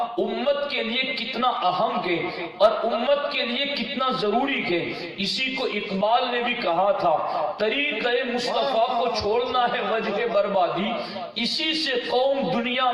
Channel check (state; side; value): identical; both; correlation 1.00